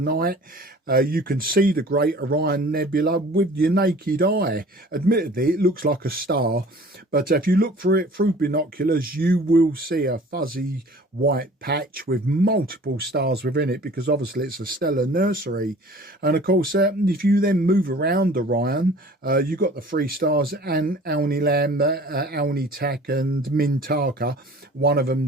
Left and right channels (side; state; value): both; normal; correlation 0.47